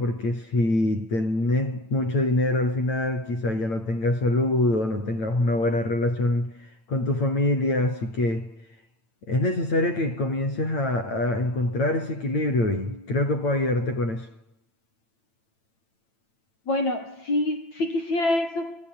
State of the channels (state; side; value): late; right; 9.0 ms